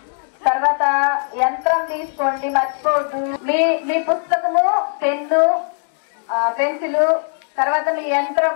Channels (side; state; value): right; silent; 66 dB below the other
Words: తర్వాత యంత్రం తీసుకోండి, మర్చిపోవద్దు. మీ పుస్తకము, పెన్ను, పెన్సిల్, తర్వాత మీ